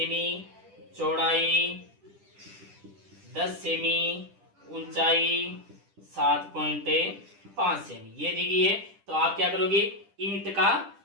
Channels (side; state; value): left; late; 10 ms